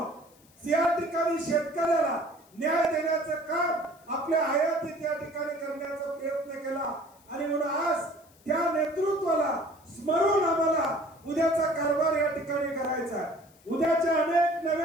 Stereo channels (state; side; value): noise; left; hiss, 29 dB below the sound